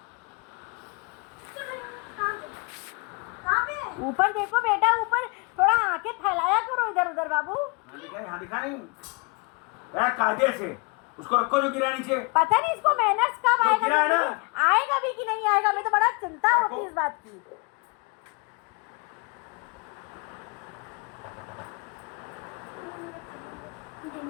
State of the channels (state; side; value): quieter; right; 31.4 dB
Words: ऊपर देखो बेटा, ऊपर थोड़ा आंखें फैलाया करो इधर उधर बाबू। हाँ दिखा नहीं यार, कायदे से उसको रखो जो गिरा नीचे। पता नहीं इसको मैनर्स कब तो आएगा, गिरा है ना? आएगा भी कि नहीं आएगा, मैं तो बड़ा चिंता होती है इस बात की।